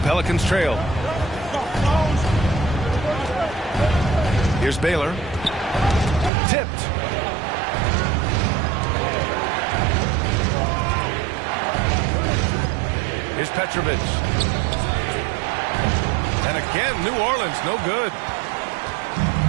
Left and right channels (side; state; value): left; drops out; at 6.3 s